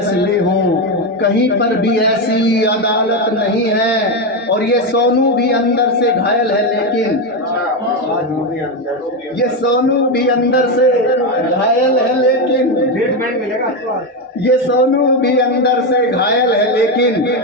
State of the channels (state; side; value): normal; both; correlation 0.10